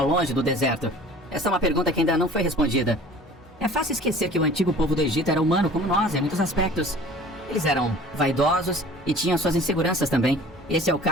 longe do deserto? Esta é uma pergunta que ainda não foi respondida. É fácil esquecer que o antigo povo do Egito era humano como nós em muitos aspectos. Eles eram vaidosos e tinham suas inseguranças também. Esse é o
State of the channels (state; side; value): normal; both; correlation 0.46